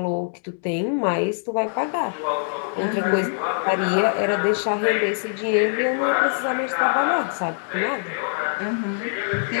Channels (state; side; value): silent; right; digital silence